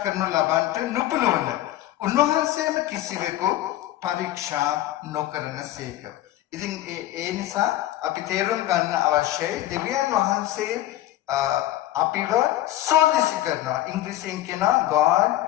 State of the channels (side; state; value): right; quieter; 14.4 dB